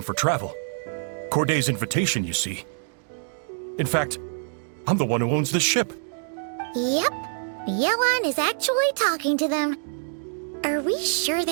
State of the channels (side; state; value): left; silent; digital silence